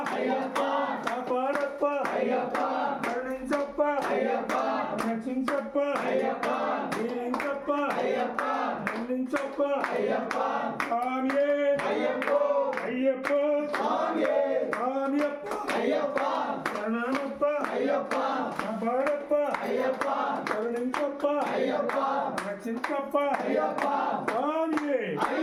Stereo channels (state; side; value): identical; both; correlation 1.00